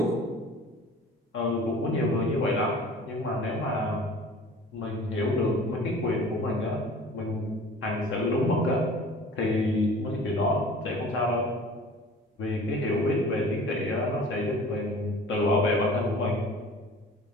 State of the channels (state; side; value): normal; both; correlation 0.45